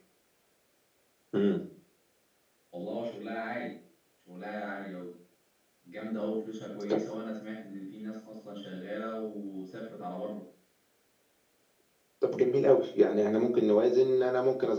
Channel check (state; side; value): identical; both; correlation 1.00